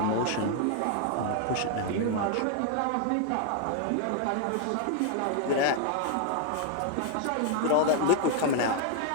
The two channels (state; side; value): different; both; correlation 0.00